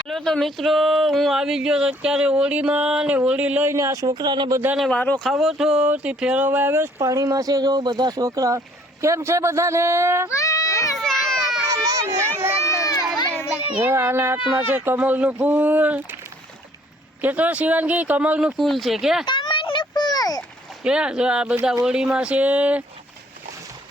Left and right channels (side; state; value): both; normal; correlation 0.60